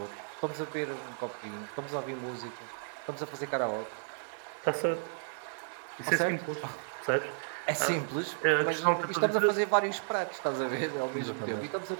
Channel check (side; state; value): left; silent; digital silence